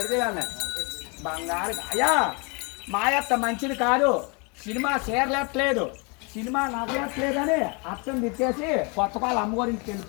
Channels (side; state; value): right; quieter; 32.3 dB